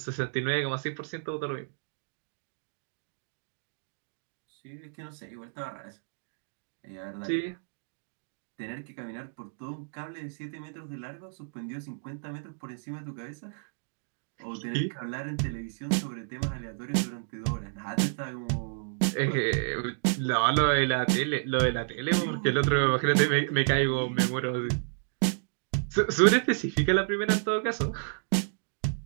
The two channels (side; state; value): left; silent; digital silence